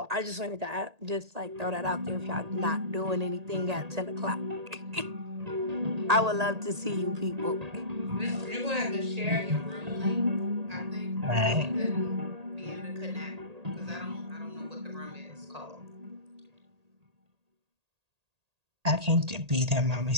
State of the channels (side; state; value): left; late; 1.8 ms